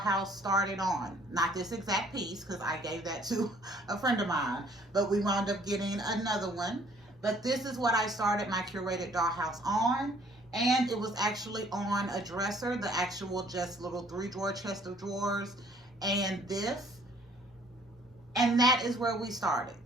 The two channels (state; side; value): normal; both; correlation 0.59